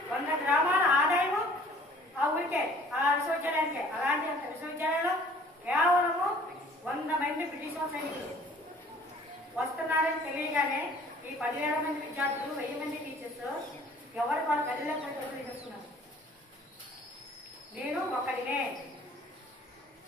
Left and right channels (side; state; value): both; normal; correlation 0.53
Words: 100 గ్రామాల ఆదాయము ఆ ఊరికే, ఆ విశ్వవిద్యాలయానికే. అలాంటి విశ్వవిద్యాలయంలో కేవలము 100 మంది బ్రిటిష్ సైనికులు వస్తున్నారని తెలియగానే ఈ 10,000 మంది విద్యార్థులు, 1000 మంది టీచర్స్ ఎవరు వాళ్ళ గదిలో చేస్తున్నారు. నేను ఒక్కడినే,